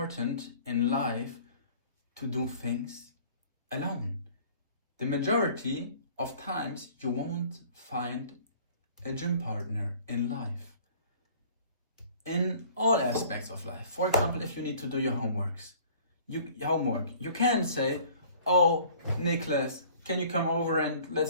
in life to do things alone. The majority of times you won't find a gym partner in life. In all aspects of life. For example, if you need to do your homework, you can say, oh, Nicholas, can you come over and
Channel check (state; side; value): inverted; both; correlation -0.51